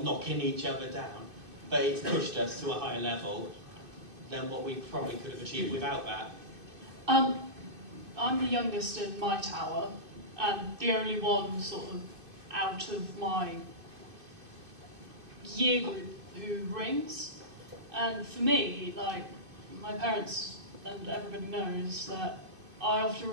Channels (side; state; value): left; late; 2.5 ms